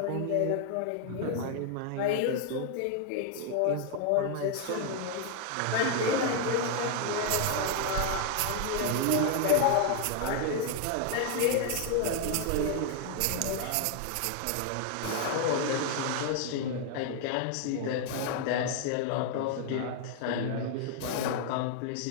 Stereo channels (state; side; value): different; both; correlation 0.00